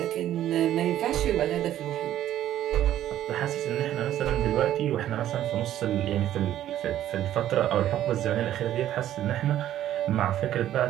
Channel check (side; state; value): left; quieter; 12.2 dB